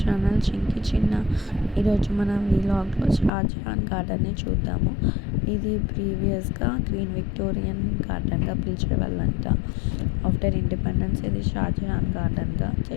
Chinki Chinna. ఈరోజు మనం వ్లాగ్లో షాజహాన్ గార్డెన్ని చూద్దాము. ఇది ప్రీవియస్గా క్వీన్ విక్టోరియన్ గార్డెన్గా పిలిచేవాళ్ళంట. ఆఫ్టర్ ఇండిపెండెన్స్ ఇది షాజహాన్ గార్డెన్గా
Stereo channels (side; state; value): right; drops out; at 3.3 s